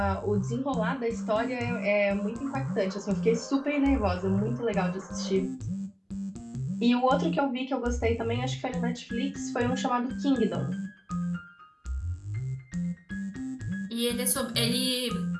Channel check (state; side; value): identical; both; correlation 1.00